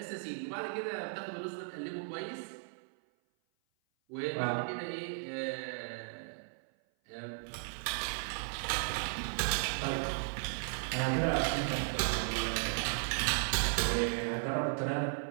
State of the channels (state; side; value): silent; left; 54 dB below the other